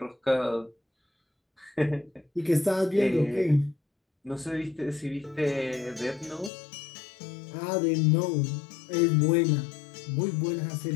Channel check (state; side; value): drops out; right; at 6.5 s